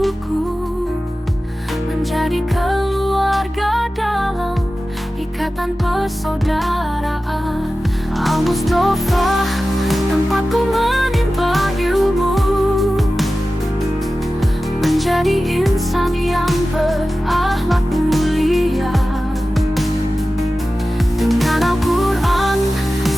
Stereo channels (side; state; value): both; normal; correlation 0.95